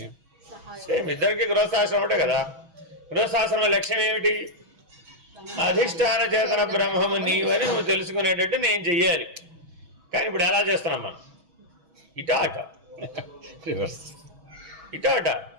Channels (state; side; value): late; left; 6.2 ms